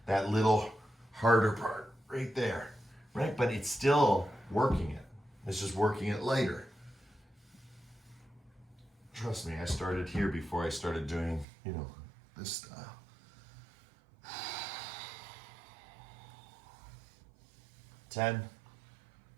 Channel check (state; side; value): drops out; left; at 11.5 s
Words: that little harder part right there, right? But it's still working it. It's just working it later. Trust me, I started here before I started doing, this style. 10,